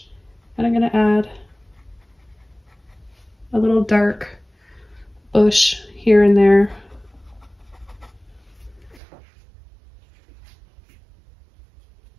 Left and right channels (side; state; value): left; drops out; at 9.0 s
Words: And I'm going to add a little dark bush here and there.